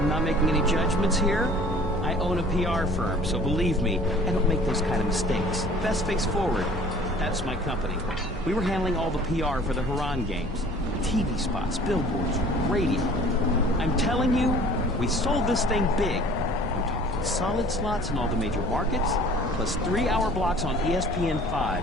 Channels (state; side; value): normal; both; correlation 0.49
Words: not making any judgments here. I own a PR firm, so believe me, I don't make those kind of mistakes. Best Face Forward. That's my company. We were handling all the PR for the Haran games. TV spots, billboards, radio. I'm telling you, we sold this thing big. I'm talking solid slots in all the major markets, plus 3-hour blocks on